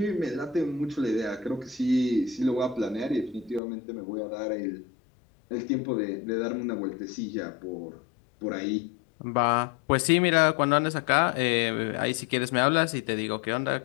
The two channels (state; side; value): drops out; right; at 3.6 s